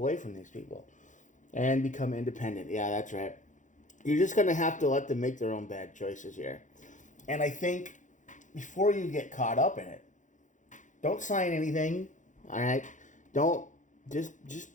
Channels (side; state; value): right; late; 0.36 ms